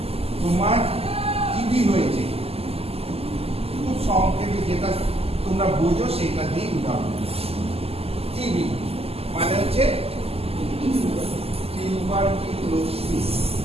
তোমার টিবি হয়েছে খুব সংক্ষেপে যেটা তোমরা বোঝো সেটা দিয়ে উদাহরণ টিবি মানে হচ্ছে টিউবারকিউলোসিস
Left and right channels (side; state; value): left; late; 0.29 ms